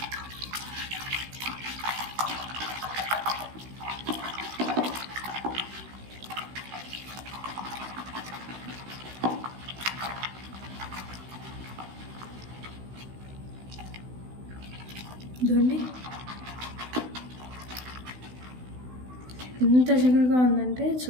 చూడండి ఎంత జిగురుగా ఉందంటే,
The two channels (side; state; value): left; late; 16 ms